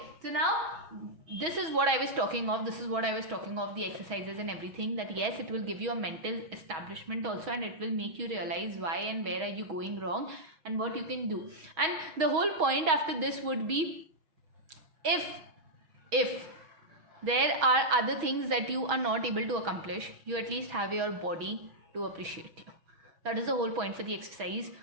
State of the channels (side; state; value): left; late; 6.2 ms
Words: so now this is what I was talking of. This is what I was talking of, the exercises and everything, that yes, it will give you a mental establishment also, and it will make you realize why and where are you going wrong and what you can do. And the whole point after this would be, if there are other things that you are not able to accomplish, you at least have your body to appreciate you. That is the whole point for the exercise